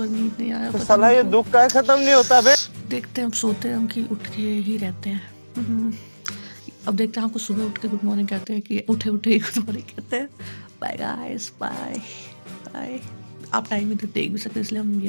नींद नहीं आया। तो साला ये दुख का खत्म नहीं होता बे। देखते हैं, हम सोते हैं हम कि उठ के ही रहते हैं। अब देखते हैं, आपको सुबह उठ के गुड मॉर्निंग कहते हैं कि उठे उठे ही गुड मॉर्निंग कहते हैं। Bye guys, bye bye. आप टाइम इधर देख भी सकते हैं, इसलिए हम ये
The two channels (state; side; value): inverted; both; correlation -1.00